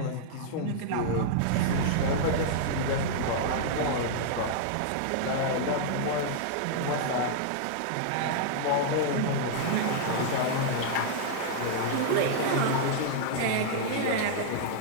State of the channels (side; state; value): both; different; correlation -0.01